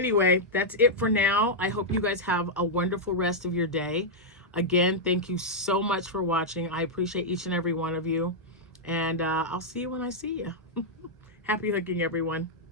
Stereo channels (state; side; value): normal; both; correlation -0.06